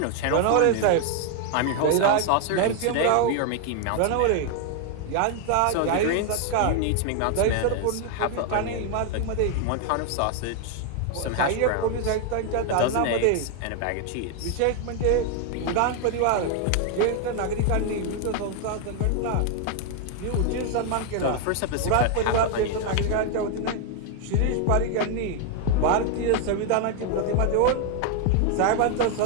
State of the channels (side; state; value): both; different; correlation 0.00